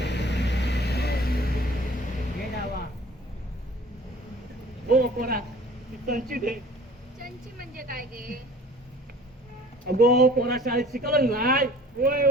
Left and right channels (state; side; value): normal; both; correlation 0.48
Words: हो पोरा ती संची दे. चंची म्हणजे काय गे. अगो पोरा शाळेत शिकवलं नाही. होय